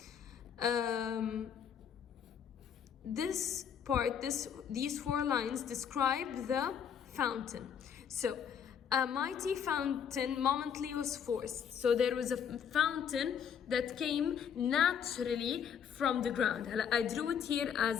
These 4 lines describe the fountain. So, a mighty fountain momently was forced. So there was a fountain that came naturally from the ground. I drew it here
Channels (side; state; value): right; quieter; 7.9 dB